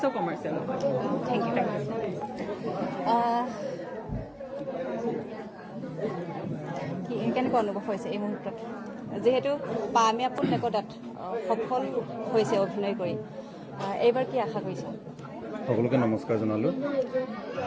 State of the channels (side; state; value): both; identical; correlation 1.00